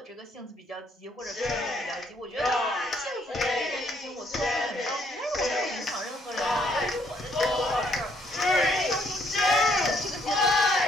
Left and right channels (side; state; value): both; normal; correlation 0.69